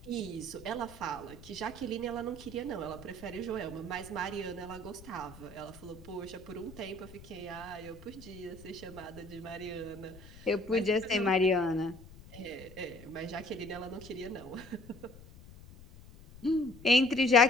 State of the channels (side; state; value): left; noise; rumble, 18 dB below the sound